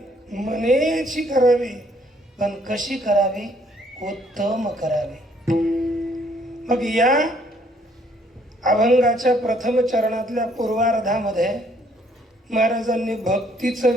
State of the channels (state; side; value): normal; both; correlation 0.65